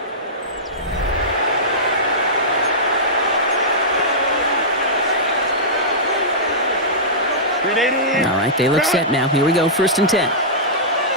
All right, they look set now. Here we go, first and 10.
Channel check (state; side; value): normal; both; correlation -0.16